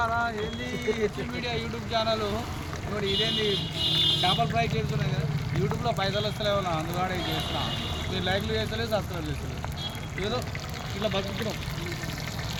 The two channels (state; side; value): identical; both; correlation 1.00